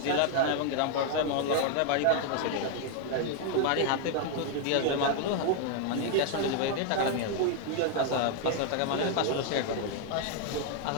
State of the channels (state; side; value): different; both; correlation 0.00